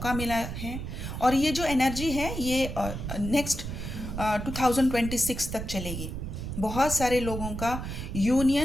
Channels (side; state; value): right; noise; rumble, 6 dB below the sound